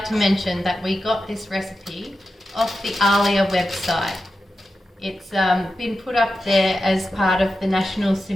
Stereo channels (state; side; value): normal; both; correlation 0.91